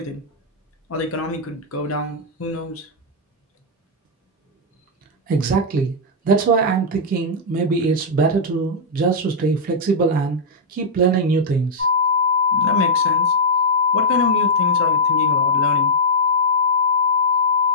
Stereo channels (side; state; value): both; normal; correlation -0.09